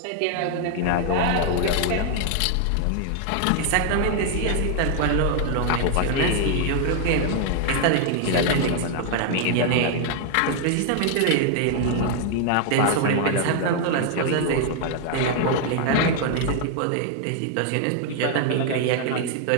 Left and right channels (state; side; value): different; both; correlation 0.00